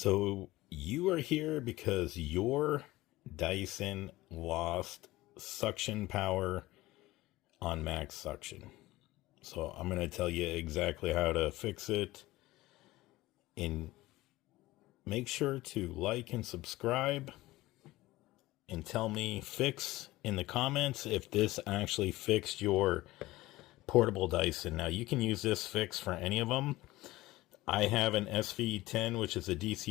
you are here because your Dyson lost suction power on max suction. So I'm going to tell you exactly how to fix it. And make sure to like and subscribe and tell me fix in the comments if this actually fixed your portable Dyson. Now you can use this fix for any of them. I have an SV10, which is a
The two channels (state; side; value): quieter; right; 18.3 dB